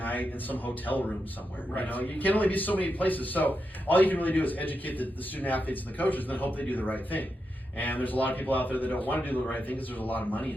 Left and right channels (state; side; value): normal; both; correlation 0.86